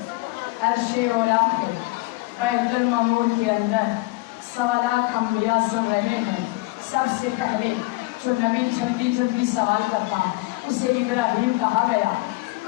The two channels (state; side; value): quieter; right; 22.5 dB